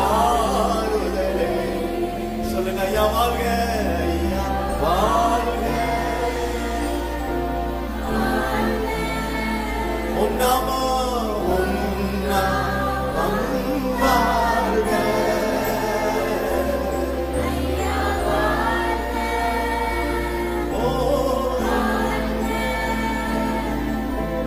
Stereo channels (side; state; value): both; identical; correlation 1.00